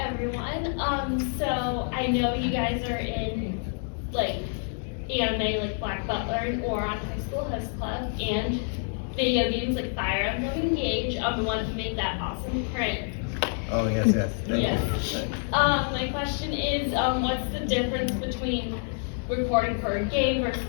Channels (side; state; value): right; silent; 60 dB below the other